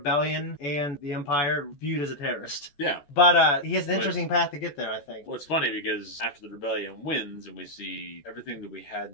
and the Empire viewed as a terrorist. Yeah. But he has an interesting path to get there, I think. Well, it's funny because after the Rebellion wins and we see everything that we had in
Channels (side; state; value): right; late; 14 ms